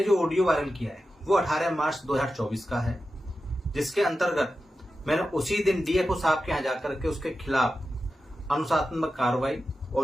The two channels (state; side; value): normal; both; correlation 0.91